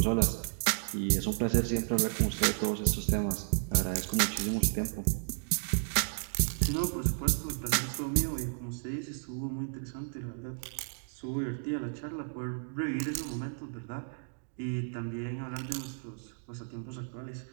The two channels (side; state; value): left; silent; digital silence